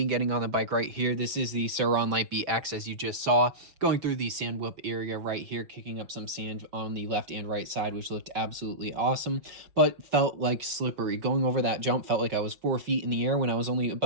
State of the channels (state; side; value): late; left; 5.5 ms